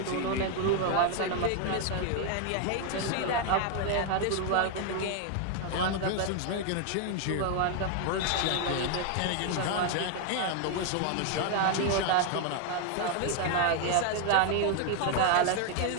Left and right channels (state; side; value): different; both; correlation 0.01